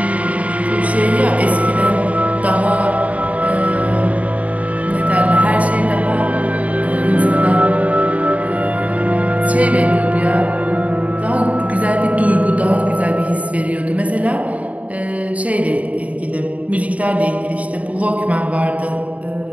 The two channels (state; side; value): late; left; 0.068 ms